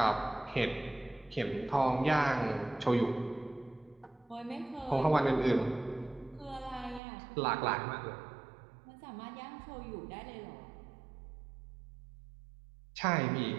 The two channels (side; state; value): left; drops out; at 7.0 s